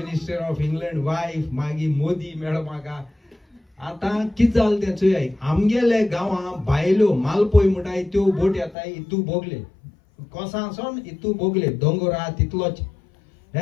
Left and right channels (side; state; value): right; drops out; at 8.8 s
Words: of England wife. मागीर मोदी मेळ्ळो म्हाका. आतां कितें जालें तें चोय. आमगेले गांवां बायल्यो मालपोय म्हणटाय त्यो बोट येताय इतू बोगले कोसांसून इतू बोगले दोंगर आहा तितलोच